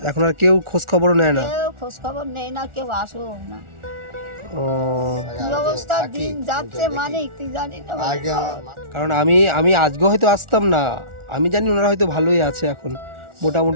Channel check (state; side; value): late; left; 1.4 ms